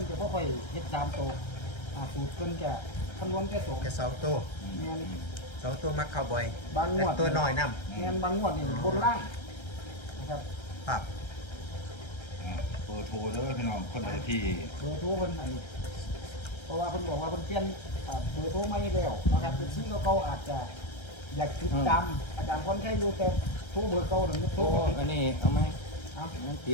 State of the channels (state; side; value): late; right; 1.3 ms